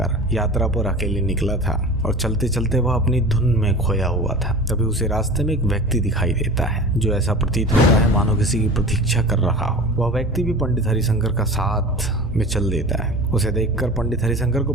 यात्रा पर अकेले निकला था और चलते चलते वह अपनी धुन में खोया हुआ था। तभी उसे रास्ते में एक व्यक्ति दिखाई देता है जो ऐसा प्रतीत होता है मानो किसी की प्रतीक्षा कर रहा हो। वह व्यक्ति भी पंडित हरिशंकर का साथ में चल देता है। उसे देखकर पंडित हरिशंकर को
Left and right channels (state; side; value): normal; both; correlation 0.36